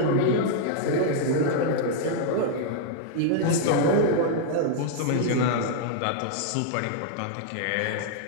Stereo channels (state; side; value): different; both; correlation -0.01